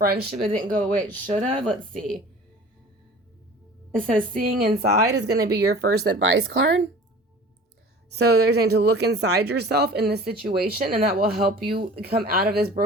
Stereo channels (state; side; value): normal; both; correlation 0.43